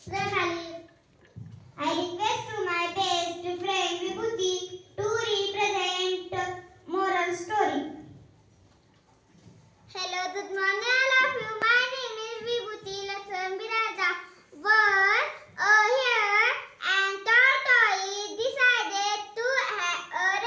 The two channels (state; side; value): identical; both; correlation 1.00